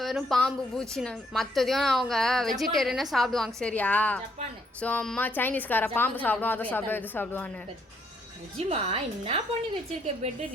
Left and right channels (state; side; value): normal; both; correlation 0.71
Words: வெறும் பாம்பு பூச்சின்னு? மற்றதையும் அவங்க வெஜிடேரியனே சாப்பிடுவாங்க சரியா? ஜப்பானு ஸோ அம்மா சைனீஸ்கார பாம்பு சாப்பிடுவோம், அதை சாப்பிடுவோம், இது சாப்பிடுவான்னு. நிஜமா என்ன பண்ணி வச்சிருக்க பெட்டு